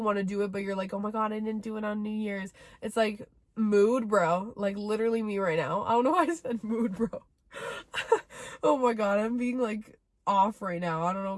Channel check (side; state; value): both; identical; correlation 1.00